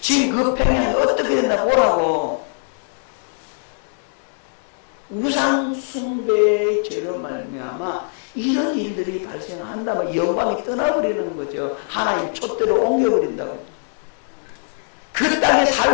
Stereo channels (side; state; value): right; silent; digital silence